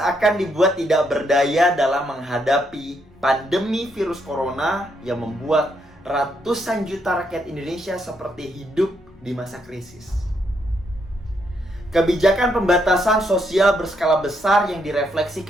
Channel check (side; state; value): both; normal; correlation 0.76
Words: dibuat tidak berdaya dalam menghadapi pandemi virus corona yang membuat ratusan juta rakyat Indonesia seperti hidup di masa krisis. Kebijakan pembatasan sosial berskala besar yang